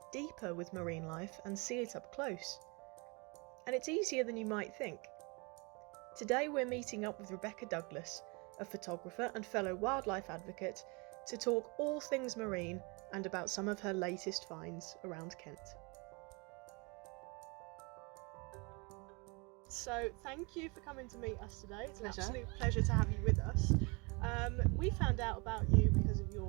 deeper with marine life and see it up close. And it's easier than you might think. Today we're meeting up with Rebecca Douglas, a photographer and fellow wildlife advocate, to talk all things marine and about some of her latest finds around Kent. So thank you for coming to meet us today. It's an absolute pleasure to have you with us. We found out about you because of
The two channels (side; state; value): left; quieter; 29.7 dB